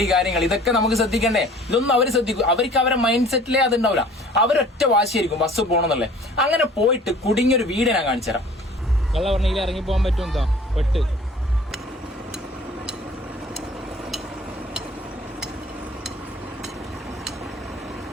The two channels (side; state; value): both; normal; correlation 0.50